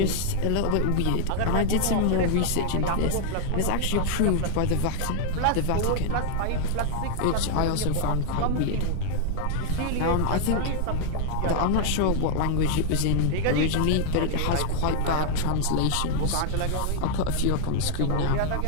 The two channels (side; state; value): both; different; correlation 0.00